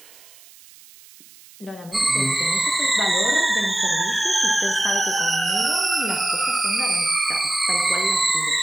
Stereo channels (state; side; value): noise; right; hiss, 23 dB below the sound